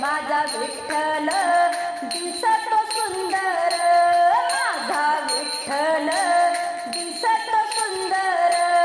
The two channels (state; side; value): identical; both; correlation 1.00